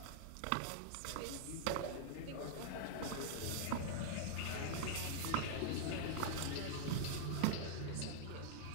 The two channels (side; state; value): both; different; correlation -0.01